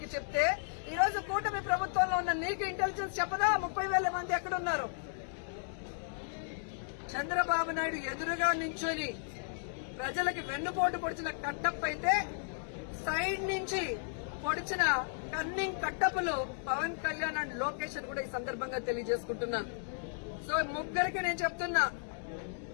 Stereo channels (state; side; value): silent; right; digital silence